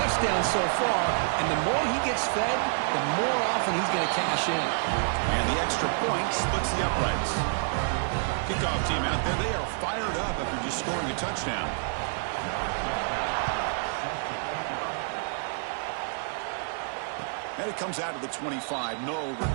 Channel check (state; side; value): silent; left; 59 dB below the other